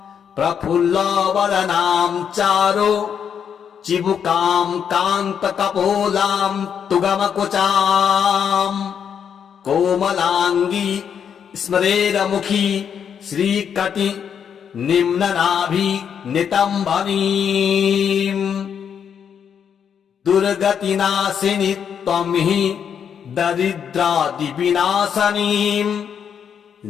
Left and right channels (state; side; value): quieter; right; 7.8 dB